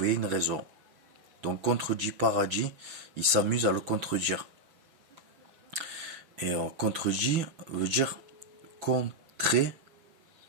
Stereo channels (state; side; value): late; left; 6.1 ms